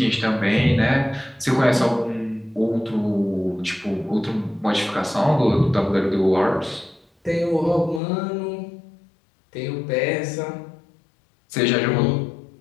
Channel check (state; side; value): drops out; right; at 8.0 s